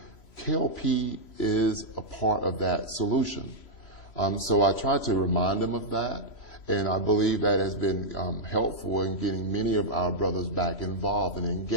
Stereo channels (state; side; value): late; right; 3.0 ms